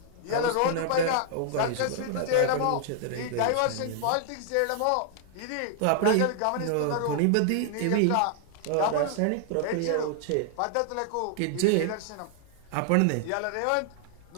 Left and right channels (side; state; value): both; different; correlation 0.00